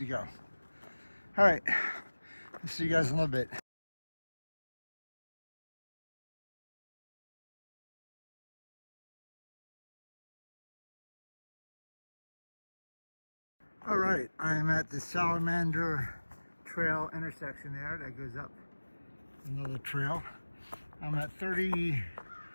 go. All right, I'll see you guys in a little bit. All right, I am at the Salamander Trail intersection there that goes up another trail. I'm at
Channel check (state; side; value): inverted; both; correlation -1.00